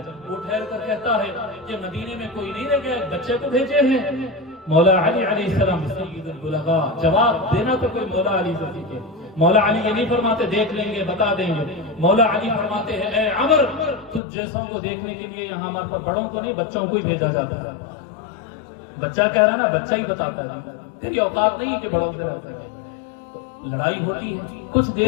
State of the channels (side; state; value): right; drops out; at 14.2 s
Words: وہ ٹھہر کر کہتا ہے کہ مدینے میں کوئی نہیں رہ گیا، بچے کو بھیجے ہیں۔ مولا علی علیہ السلام سید البلغاء، جواب دینا تو کوئی مولا علی سے سیکھے۔ مولا علی یہ نہیں فرماتے دیکھ لیں گے بتا دیں گے، مولا علی فرماتے ہیں اے عمر، تجھ جیسوں کو دیکھنے کے لیے یہاں ہمارے پر بڑوں کو نہیں بچوں کو ہی بھیجا جاتا ہے۔ بچہ کہہ رہا ہے نا، بچہ ہی بتاتا ہے، تیری اوقات نہیں ہے کہ بڑوں سے رہتا ہے۔ لڑائی ہوتی ہے، کچھ